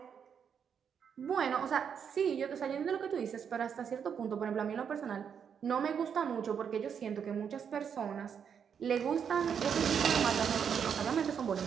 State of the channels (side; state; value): left; quieter; 7.4 dB